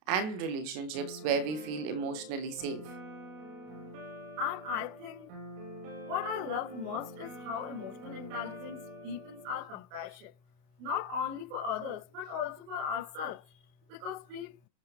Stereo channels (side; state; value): left; late; 32 ms